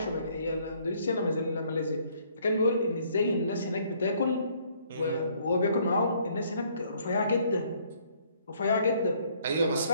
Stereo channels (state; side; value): inverted; both; correlation -0.65